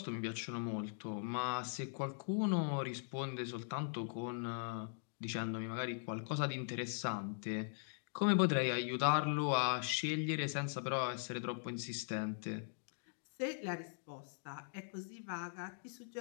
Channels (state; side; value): silent; right; digital silence